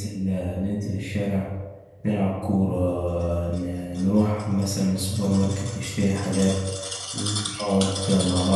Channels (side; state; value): both; identical; correlation 1.00